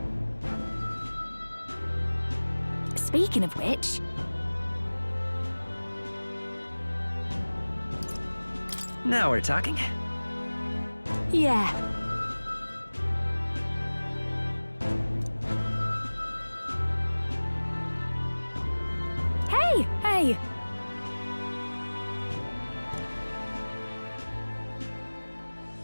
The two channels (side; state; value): both; inverted; correlation -1.00